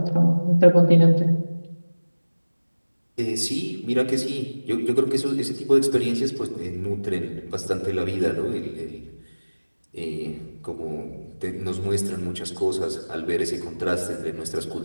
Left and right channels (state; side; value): inverted; both; correlation -1.00